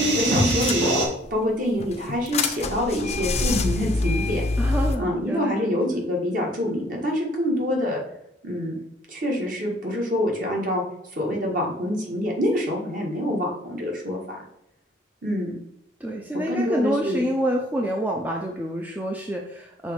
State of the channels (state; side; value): normal; both; correlation 0.60